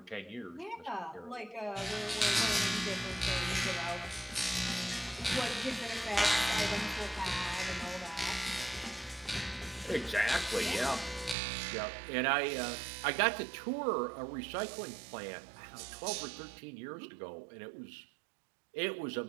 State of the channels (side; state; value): left; drops out; at 11.4 s